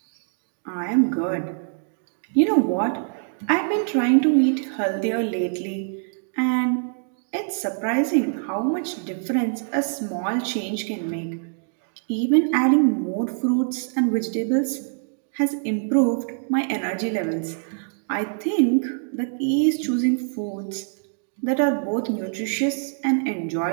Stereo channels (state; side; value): silent; left; 62 dB below the other